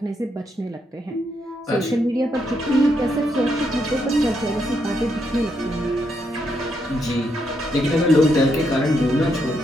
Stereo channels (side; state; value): both; normal; correlation 0.78